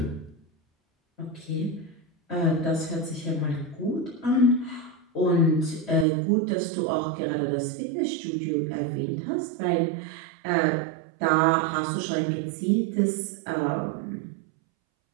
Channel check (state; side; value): drops out; left; at 6.1 s